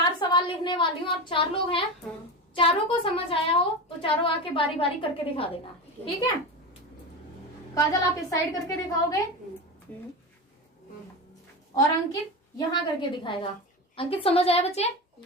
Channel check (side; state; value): both; normal; correlation 0.23